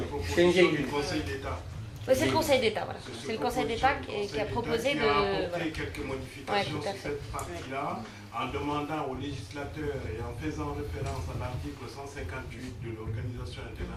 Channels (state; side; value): identical; both; correlation 1.00